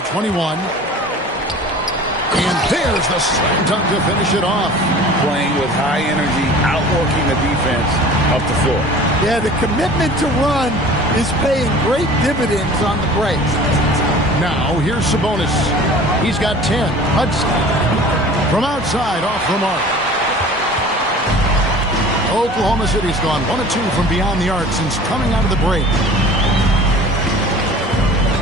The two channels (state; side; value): normal; both; correlation 0.43